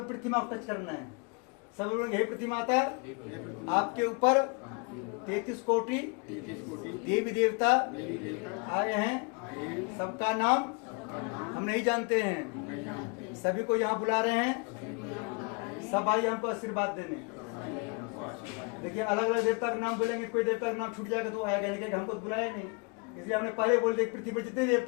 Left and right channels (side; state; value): right; quieter; 32.8 dB